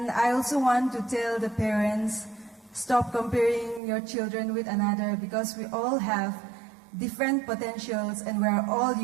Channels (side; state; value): left; drops out; at 3.8 s